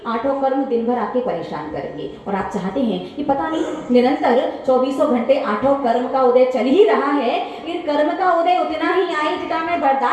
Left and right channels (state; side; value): identical; both; correlation 1.00